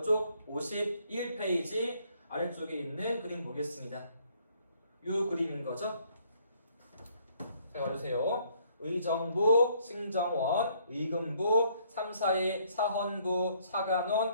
51페이지 아래쪽에 있는 그림 보겠습니다. 이 그림인 거죠. 잘 봐주세요. 의정부, 승정원, 의금부, 3, 4의 사헌부,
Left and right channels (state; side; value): inverted; both; correlation -0.65